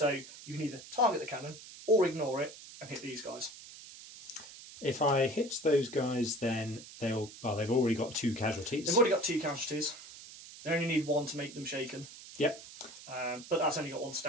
you can either target the cannon, or ignore it, and hit these guys. If I hit those guys, then they've already got 2 casualties. They've already got 2 casualties. They only need 1 to make them shaken. Yep. But that's only got 1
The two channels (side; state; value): right; noise; hiss, 16 dB below the sound